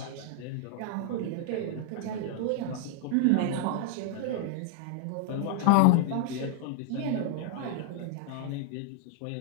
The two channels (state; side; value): different; both; correlation 0.00